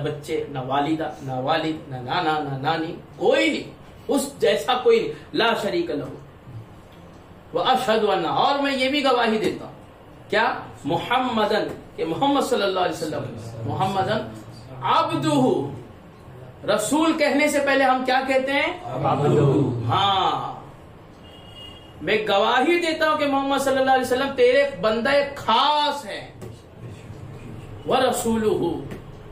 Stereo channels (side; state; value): both; identical; correlation 1.00